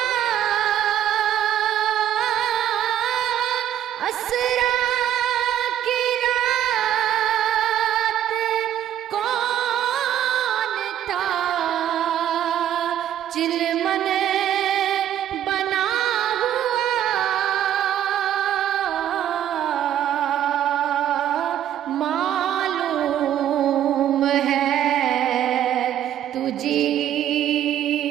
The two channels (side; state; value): left; quieter; 11.0 dB